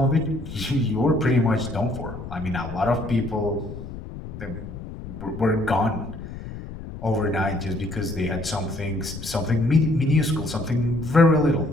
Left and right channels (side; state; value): left; noise; rumble, 11 dB below the sound